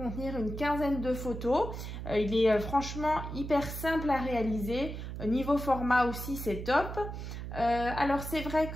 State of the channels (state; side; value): noise; right; hum, 7 dB below the sound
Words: une quinzaine de photos. Il est franchement hyper simple à réaliser. Niveau format aussi, c'est top. Alors c'est vrai